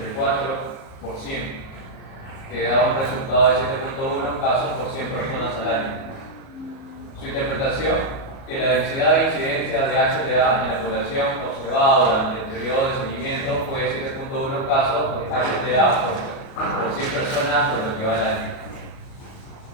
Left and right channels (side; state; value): right; late; 37 ms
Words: que da un resultado de 7.1 casos por 100 personas al año. Su interpretación, que la densidad de incidencia de HTA en la población observada durante el periodo de seguimiento fue de 7.1 casos de HTA por 100 personas de lo que va el año.